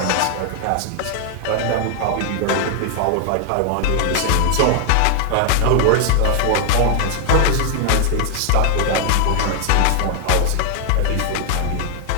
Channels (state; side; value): different; both; correlation 0.00